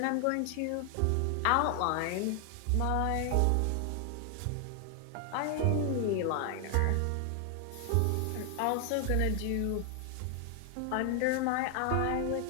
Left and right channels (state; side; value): different; both; correlation 0.00